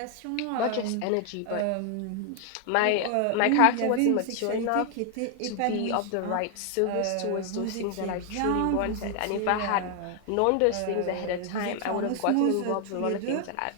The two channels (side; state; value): both; different; correlation 0.00